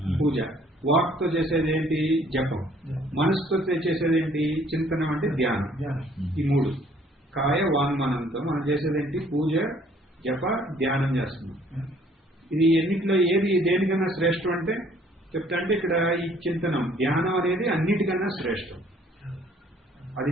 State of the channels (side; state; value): both; normal; correlation 0.60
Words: పూజ. వాక్తో చేసేది ఏంటి? జపం. మనసుతో చేసేది ఏంటి? చింతనం అంటే ధ్యానం. ఈ మూడు కాయ వాంగ్మనంతో మనం చేసేది ఏంటి? పూజ, జప, ధ్యానం చేస్తున్నాం. ఇది ఎన్నిట్లో ఏది దేనికన్నా శ్రేష్టం అంటే చెప్తా అంటే ఇక్కడ ఈ చింతనం, ధ్యానం అనేది అన్నిటికన్నా శ్రేష్టం. అది